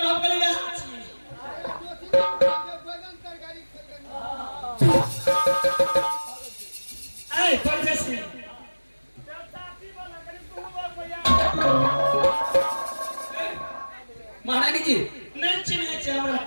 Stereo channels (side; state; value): both; inverted; correlation -1.00